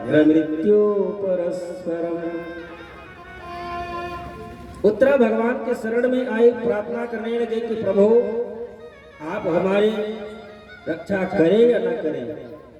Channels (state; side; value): identical; both; correlation 1.00